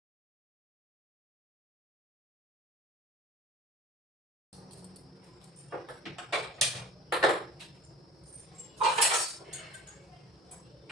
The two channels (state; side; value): normal; both; correlation 0.42